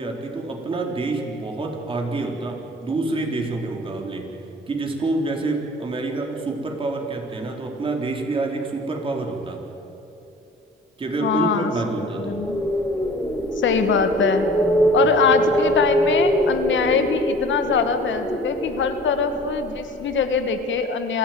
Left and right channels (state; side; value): normal; both; correlation 0.45